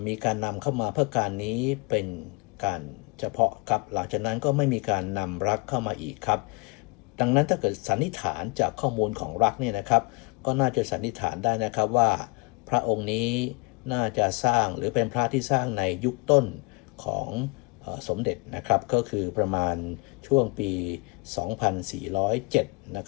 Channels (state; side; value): quieter; right; 30.1 dB